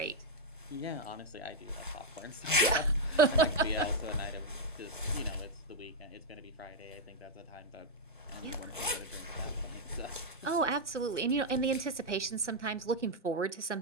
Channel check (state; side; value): normal; both; correlation -0.01